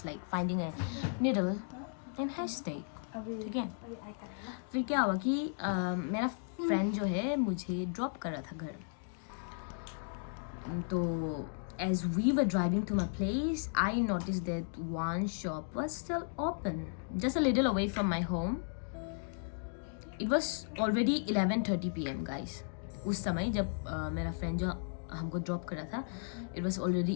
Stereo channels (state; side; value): silent; right; digital silence